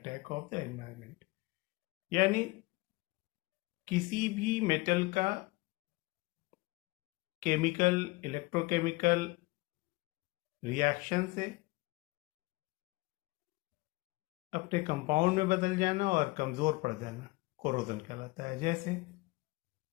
of the environment. यानी किसी भी metal का chemical electrochemical reaction से अपने compound में बदल जाना और कमजोर पड़ जाना कोरोजन कहलाता है। जैसे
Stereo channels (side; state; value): right; quieter; 22.7 dB